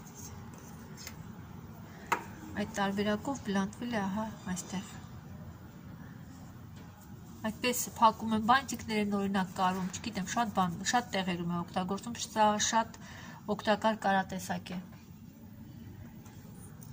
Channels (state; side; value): identical; both; correlation 1.00